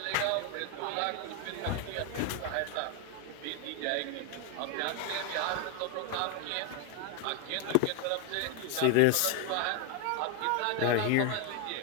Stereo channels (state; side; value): different; both; correlation 0.01